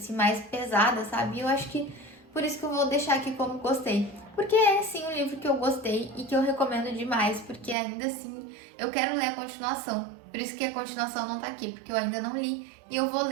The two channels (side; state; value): left; drops out; at 7.8 s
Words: mais pesada, sabe? E eu acho que por isso que eu vou deixar aqui como gostei. Porque é sim um livro que eu gostei e que eu recomendo demais, porque ainda assim eu quero ler a continuação. Por isso que a continuação não tá aqui, porque eu ainda não li e eu vou